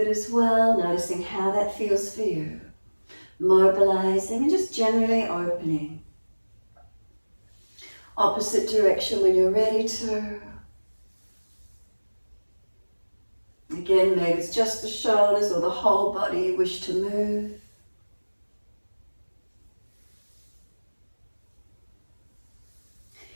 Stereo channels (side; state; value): both; inverted; correlation -1.00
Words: as well, noticing how that feels for you. Mobilizing and just generally opening. Opposite direction when you're ready to. Again, maybe it's just the shoulders or the whole body you wish to move.